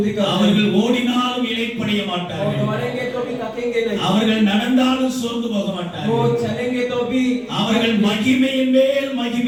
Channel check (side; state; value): both; identical; correlation 1.00